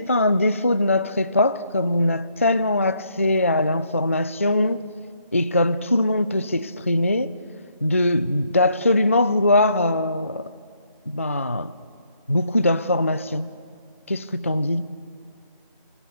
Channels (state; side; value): inverted; both; correlation -0.72